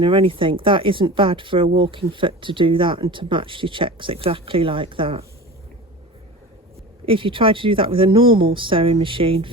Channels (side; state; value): both; normal; correlation 0.33